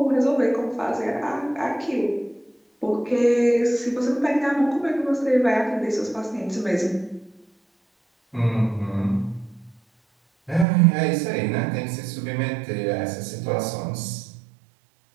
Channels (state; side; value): drops out; left; at 10.7 s